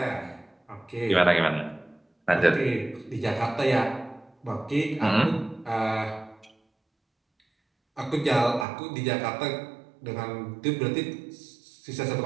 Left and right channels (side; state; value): left; drops out; at 8.7 s